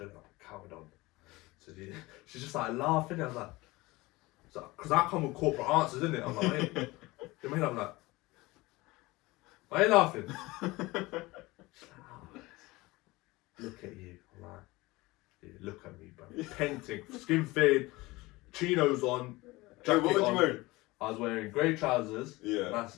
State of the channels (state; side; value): quieter; right; 21.2 dB